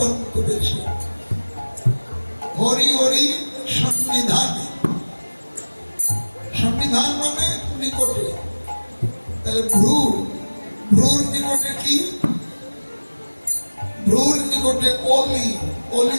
করেছে। হরি হরি সন্নিধান, সন্নিধান মানে নিকটে। তাহলে ভ্রুর নিকটে কি? ভ্রুর নিকটে অলি, অলি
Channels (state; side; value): inverted; both; correlation -1.00